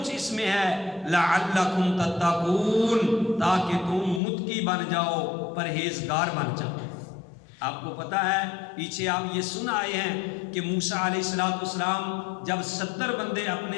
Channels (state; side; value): drops out; right; at 4.2 s